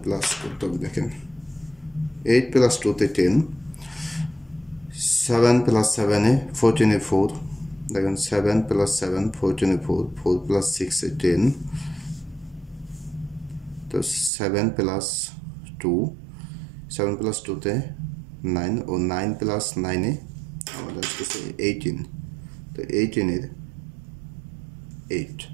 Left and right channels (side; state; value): left; drops out; at 14.3 s